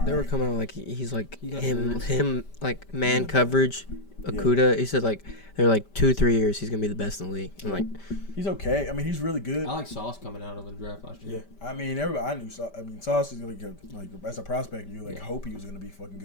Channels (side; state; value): right; late; 5.1 ms